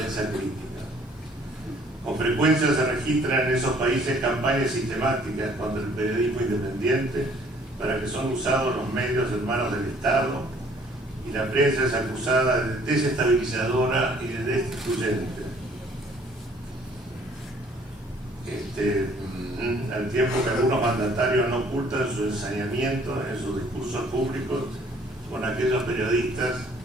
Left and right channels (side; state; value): both; normal; correlation 0.59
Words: crítica. Con frecuencia se registran en esos países campañas sistemáticas contra el periodismo independiente para que son usados los medios en manos del Estado, y la prensa es acusada de desestabilizadora y de destituyente. Al tiempo que algunos mandatarios no ocultan su ensañamiento en sus discursos públicos con aquellos periodistas